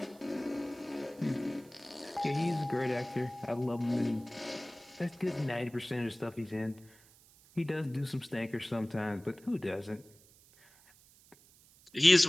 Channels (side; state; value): right; noise; hiss, 26 dB below the sound